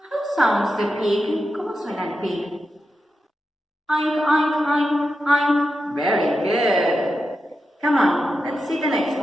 sounds the pig? ¿Cómo suena el pig? Oink, oink, oink, oink. Very good. Come on, let's see the next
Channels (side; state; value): both; normal; correlation 0.89